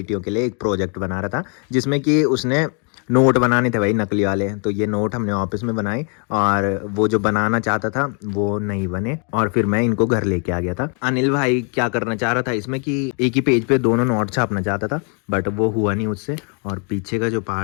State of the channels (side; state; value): right; quieter; 38.5 dB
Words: के लिए एक प्रोजेक्ट बना रहा था, जिसमें कि उसने नोट बनाने थे भाई नकली वाले। तो ये नोट हमने ऑफिस में बनाए, और वो जो बनाना चाहता था वो नहीं बने, और फिर मैं इनको घर लेके आ गया था। अनिल भाई क्या करना चाह रहा था इसमें कि एक ही पेज पे दोनों नोट छापना चाहता था, बट वो हुआ नहीं उससे। और पीछे का जो